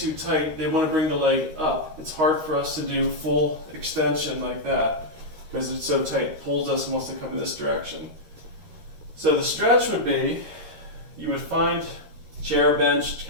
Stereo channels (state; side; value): late; left; 13 ms